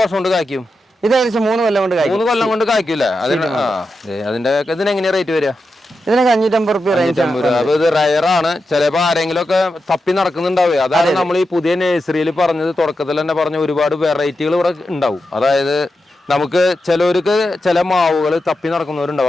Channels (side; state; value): both; normal; correlation 0.89